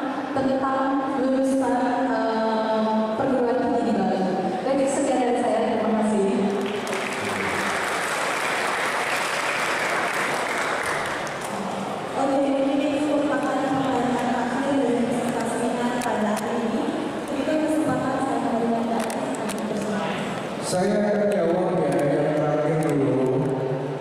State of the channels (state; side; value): identical; both; correlation 1.00